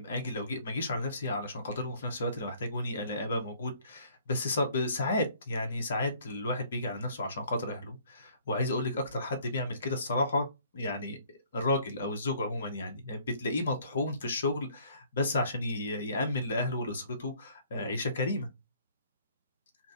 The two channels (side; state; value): both; inverted; correlation -0.59